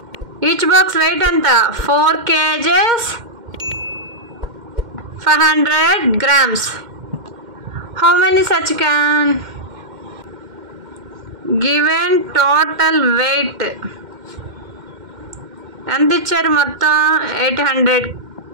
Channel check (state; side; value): late; left; 2.1 ms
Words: వెయిట్ ఎంత? 4 kgs 500 grams. How many such can? Given total weight ఎంత ఇచ్చారు? మొత్తం 800